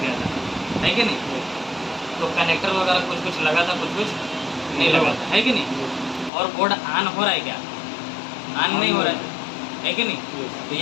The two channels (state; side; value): drops out; right; at 6.3 s